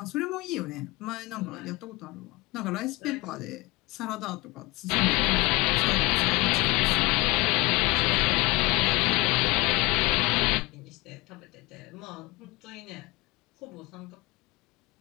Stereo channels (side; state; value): right; quieter; 23.3 dB